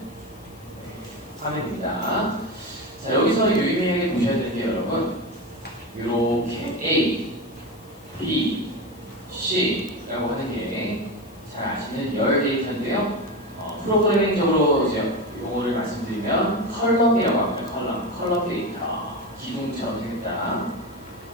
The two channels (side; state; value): left; noise; hiss, 26 dB below the sound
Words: 화면입니다. 자, 여기서 유의미하게 보셔야 되는 게 여러분 이렇게 A, B, C라고 하는 게 잘 아시는 열 데이터인데요. 프로그래밍적으로 이제 용어를 말씀드리면 컬럼이라고 합니다. 컬럼 데이터, 기둥처럼 생겼다